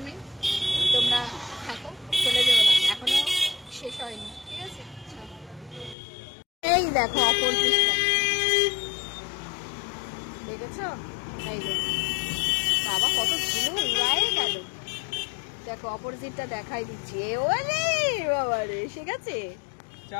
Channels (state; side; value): drops out; right; at 6.0 s